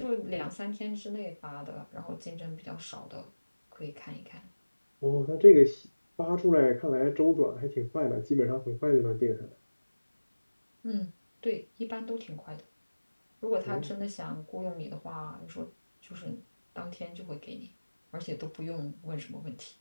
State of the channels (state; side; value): inverted; both; correlation -1.00